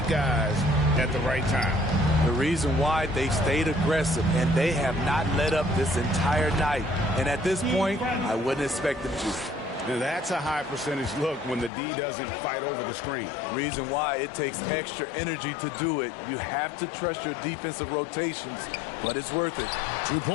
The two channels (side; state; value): right; drops out; at 11.7 s